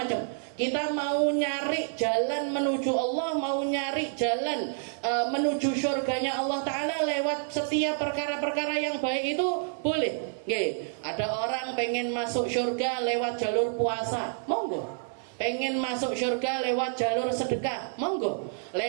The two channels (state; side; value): silent; left; 59 dB below the other